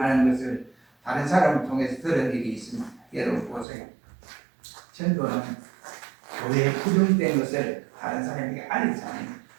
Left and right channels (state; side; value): drops out; left; at 3.7 s